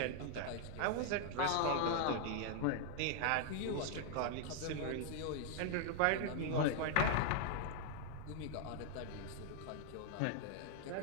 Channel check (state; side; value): different; both; correlation 0.00